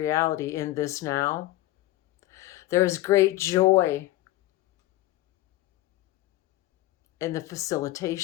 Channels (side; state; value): right; quieter; 16.7 dB